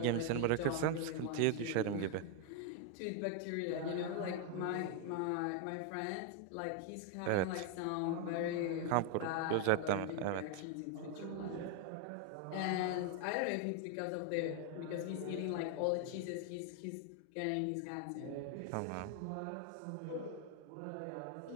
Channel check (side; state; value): both; different; correlation 0.00